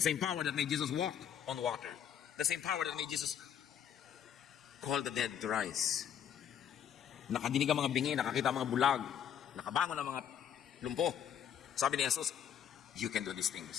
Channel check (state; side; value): quieter; right; 9.2 dB